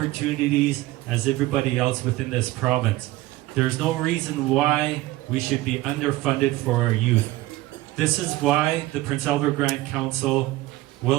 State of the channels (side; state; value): left; quieter; 17.9 dB